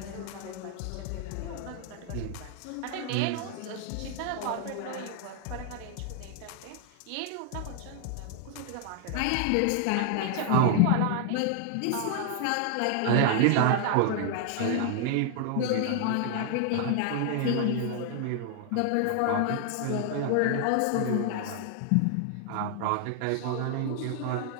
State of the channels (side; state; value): both; different; correlation 0.00